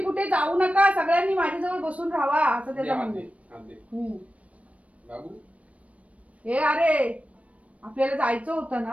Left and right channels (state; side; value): late; left; 0.065 ms